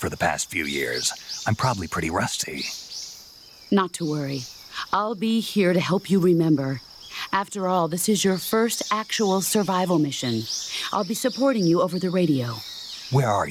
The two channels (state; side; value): identical; both; correlation 1.00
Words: the past few years. I'm probably pretty rusty. Not to worry. I'll be here to help you remember. After all, this is your first actual survival mission. I'll be supporting you over the radio. Where are